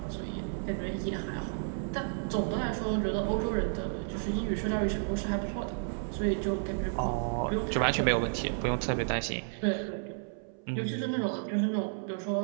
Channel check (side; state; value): left; silent; 57 dB below the other